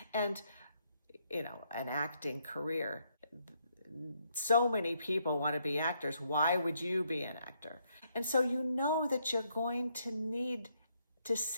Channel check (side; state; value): both; inverted; correlation -0.74